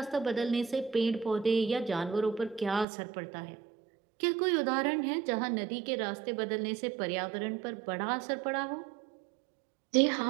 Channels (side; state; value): left; drops out; at 2.9 s